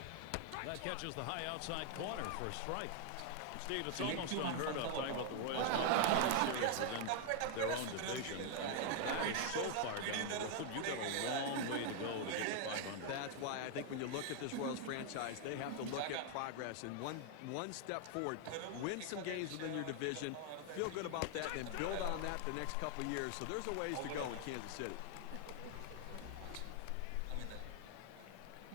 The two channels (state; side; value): different; both; correlation 0.00